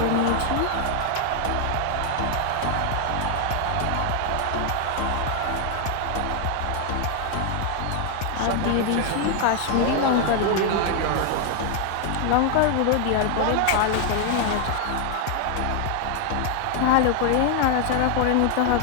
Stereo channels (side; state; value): both; different; correlation 0.00